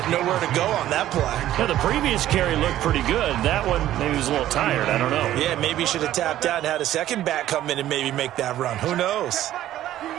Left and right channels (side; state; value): left; quieter; 13.2 dB